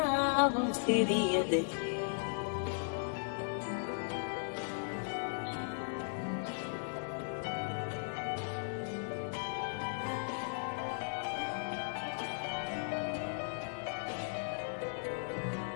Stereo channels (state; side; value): silent; right; 53 dB below the other